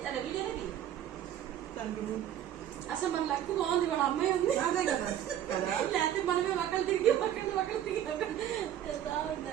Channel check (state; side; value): quieter; left; 11.0 dB